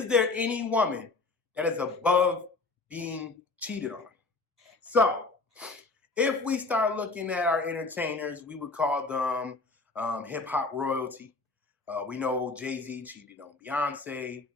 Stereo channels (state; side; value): quieter; right; 3.6 dB